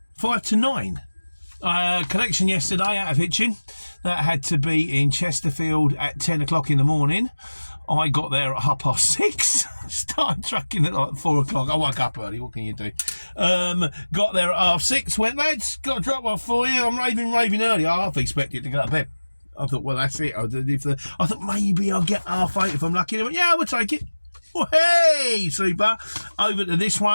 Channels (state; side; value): inverted; both; correlation -1.00